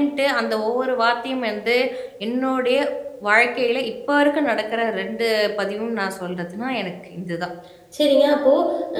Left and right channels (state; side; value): identical; both; correlation 1.00